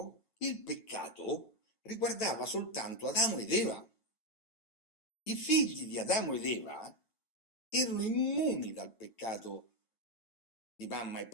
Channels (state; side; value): late; right; 9.0 ms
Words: il peccato riguardava soltanto Adamo ed Eva. I figli di Adamo ed Eva erano immuni dal peccato di mamma e